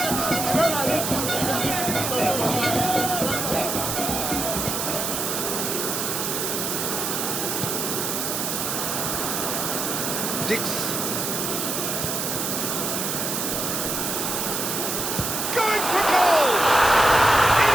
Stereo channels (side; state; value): right; noise; hiss, 1 dB below the sound